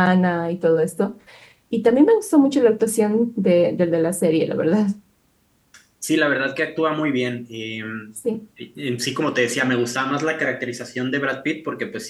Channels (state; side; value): identical; both; correlation 1.00